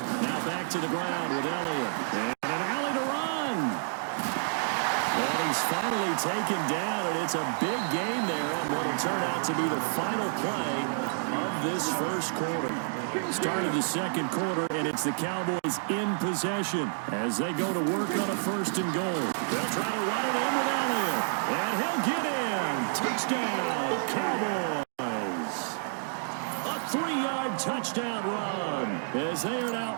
back to the ground with Elliott. And an alley to run. And he's finally taken down, and it's a big gain there on what will turn out to be the final play of this first quarter. Start of the second quarter, and it's the Cowboys in possession as they go to work on a first and goal. They'll try to run it in with Elliott, and he'll get in. Touchdown, Cowboys. A 3-yard touchdown run as they are now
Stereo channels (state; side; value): silent; left; digital silence